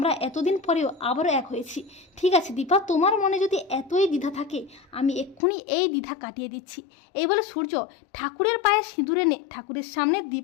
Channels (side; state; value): right; drops out; at 5.4 s